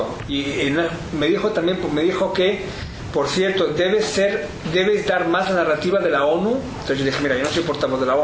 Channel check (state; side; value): identical; both; correlation 1.00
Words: y me dijo que, por cierto, debes dar más la narrativa de la ONU. Entonces yo dije, mira, yo no soy portavoz de la